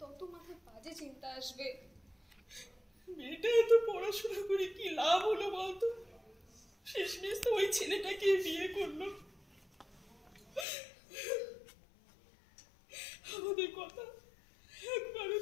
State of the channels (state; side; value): drops out; right; at 10.7 s